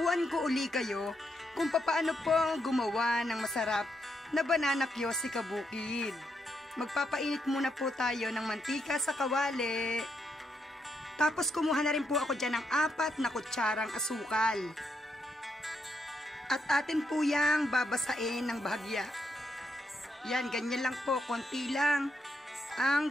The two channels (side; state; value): both; normal; correlation 0.80